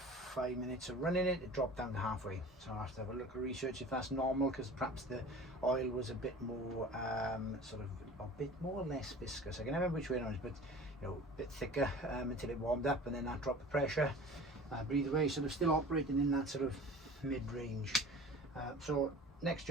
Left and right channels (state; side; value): normal; both; correlation 0.41